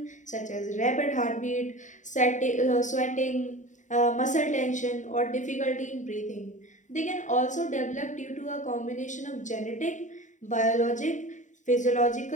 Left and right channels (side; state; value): right; late; 0.36 ms